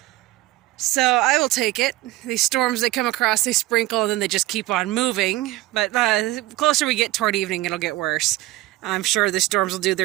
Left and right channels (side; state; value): left; quieter; 18.0 dB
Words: So I will take it. These storms, they come across, they sprinkle, and then they just keep on moving. But the closer we get toward evening, it'll get worse. I'm sure the storms will do